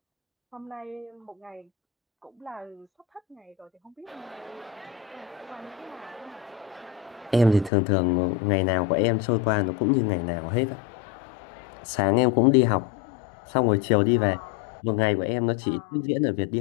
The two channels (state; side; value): drops out; right; at 7.7 s